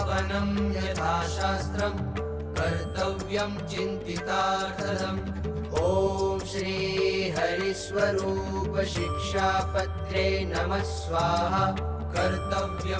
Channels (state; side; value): identical; both; correlation 1.00